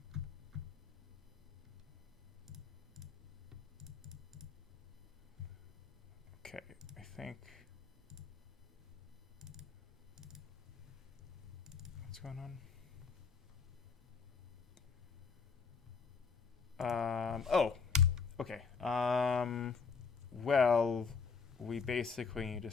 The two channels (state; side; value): quieter; right; 5.3 dB